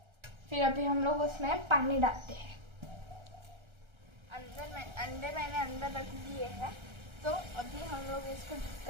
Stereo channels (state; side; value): late; left; 1.3 ms